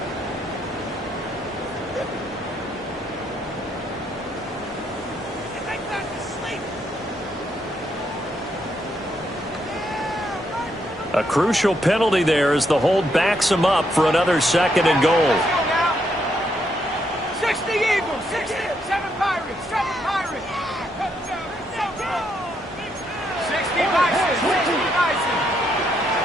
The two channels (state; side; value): normal; both; correlation 0.76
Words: A crucial penalty there as the hold backs him up for another second and goal. 60 Eagles, 60, 7 Pirates, 7 Pirates. 60 Bison, 60 Bison.